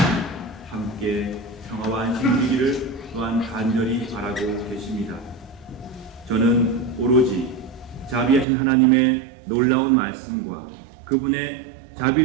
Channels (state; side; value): drops out; left; at 8.5 s